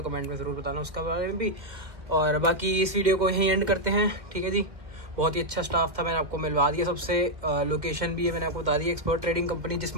कमेंट में ज़रूर बताना उसका बारे में भी। और बाकी इस वीडियो को यहीं एंड करते हैं, ठीक है जी। बहुत ही अच्छा स्टाफ था, मैंने आपको मिलवा दिया सबसे। लोकेशन भी है मैंने आपको बता दी, एक्सपर्ट ट्रेडिंग कंपनी, जिस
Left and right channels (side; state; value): left; late; 2.1 ms